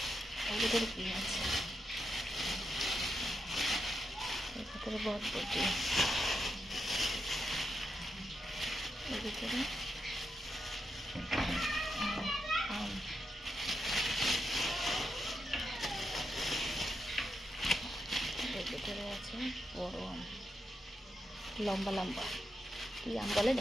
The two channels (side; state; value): both; normal; correlation 0.85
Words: এর ভিতরে কী আছে? এর ভিতরে বরবটি, এর ভিতরে আম, এর ভিতরে আছে বড় আম, লম্বা লম্বা, কী আম বলে